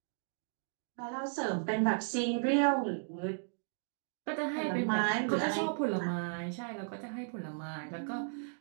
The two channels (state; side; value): silent; left; digital silence